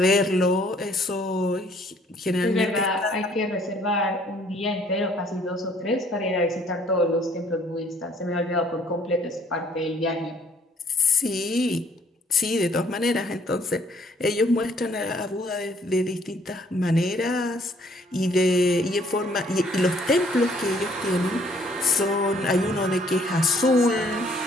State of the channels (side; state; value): both; normal; correlation 0.62